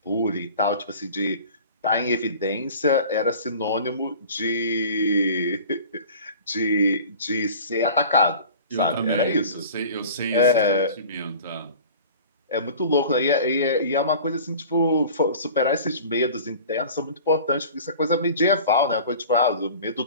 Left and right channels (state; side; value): inverted; both; correlation -0.42